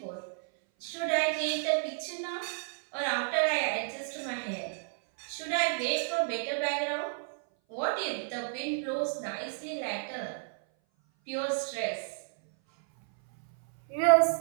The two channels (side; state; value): left; silent; 57 dB below the other